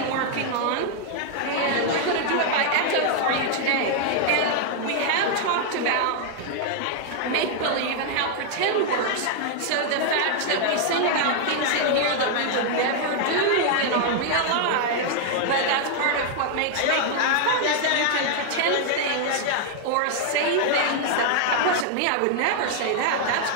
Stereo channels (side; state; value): both; different; correlation 0.00